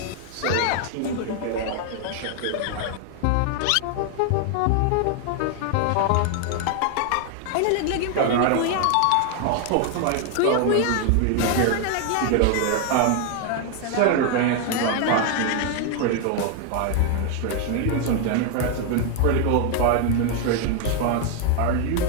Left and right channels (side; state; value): both; different; correlation 0.00